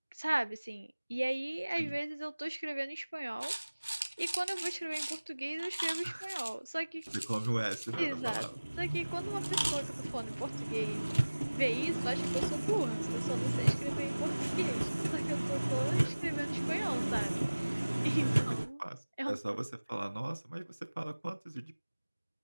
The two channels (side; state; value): both; inverted; correlation -1.00